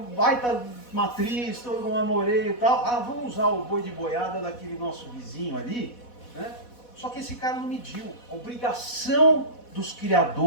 baita matriz, todo um marmoreio e tal, vamos usar o boi de boiada daquele nosso vizinho ali, né? Só que esse cara não mediu. A obrigação dos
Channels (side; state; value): right; late; 4.1 ms